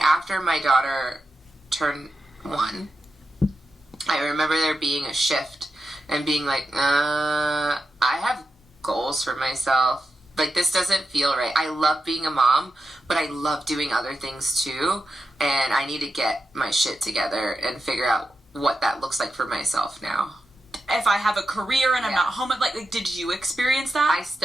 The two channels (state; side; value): normal; both; correlation 0.89